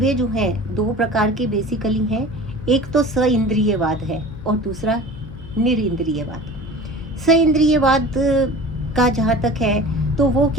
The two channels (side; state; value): left; noise; hum, 15 dB below the sound